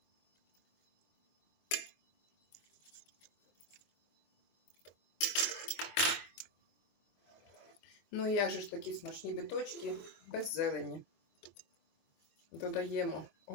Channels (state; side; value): late; right; 23 ms